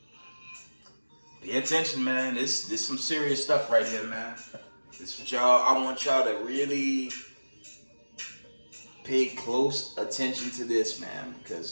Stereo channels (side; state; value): both; inverted; correlation -1.00